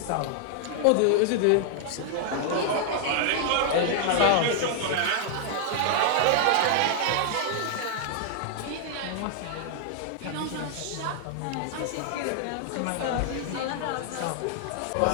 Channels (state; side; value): different; both; correlation 0.00